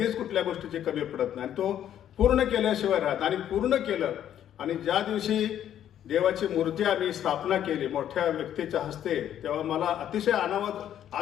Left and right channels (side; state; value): right; quieter; 10.6 dB